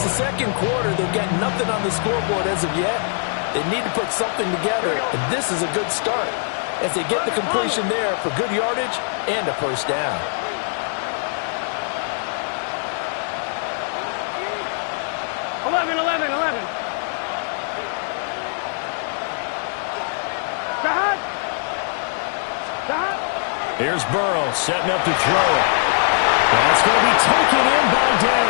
the second quarter. They've got nothing on the scoreboard as of yet. They need to put something together, and this is a good start as they get the completion there for good yardage and a first down. Here's Burrow setting up to throw it. That's going to be taken in by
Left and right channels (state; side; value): silent; right; 62 dB below the other